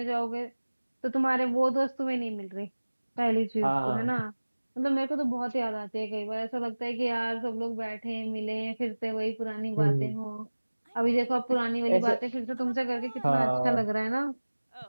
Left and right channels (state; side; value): inverted; both; correlation -1.00